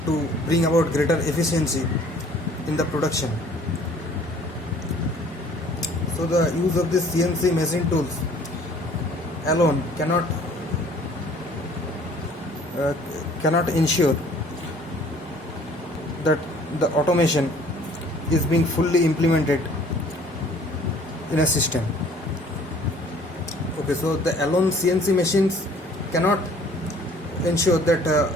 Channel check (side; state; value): both; normal; correlation 0.54